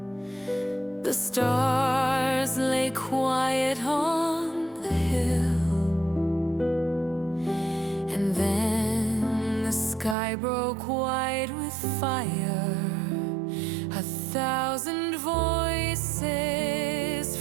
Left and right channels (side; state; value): left; drops out; at 10.2 s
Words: The stars lay quiet on the hill. And then the sky broke white with fire. 1,000 voices